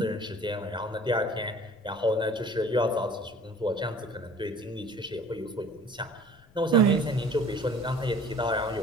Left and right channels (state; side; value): noise; left; rumble, 29 dB below the sound